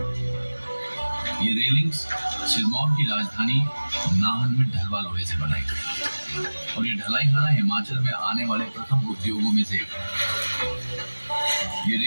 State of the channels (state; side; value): inverted; both; correlation -1.00